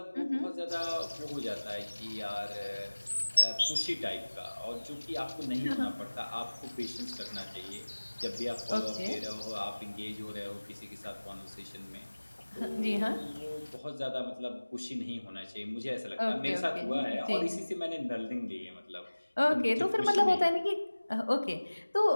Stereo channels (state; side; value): inverted; both; correlation -1.00